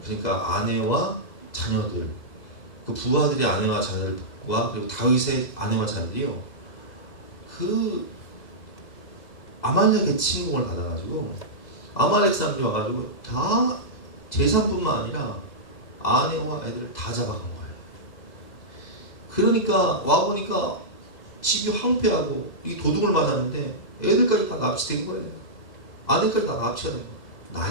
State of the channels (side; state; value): right; late; 2.0 ms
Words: 그러니까 아내와 자녀들, 그 부하들의 아내와 자녀들과 그리고 다윗의 아내와 자녀들이요, 그 아말렉의 침공을 받아가지고 아말렉 사람들이 와가지고 다 재산뿐만 아니라 아내와 애들을 다 잡아간 거예요. 그러니까 와보니까 집이 황폐하고 이 도둑을 맞았는데 애들까지 다 납치된 거예요. 아내까지 다 납치가 된 거예요.